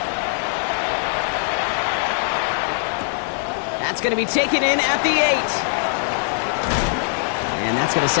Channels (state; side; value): silent; right; 65 dB below the other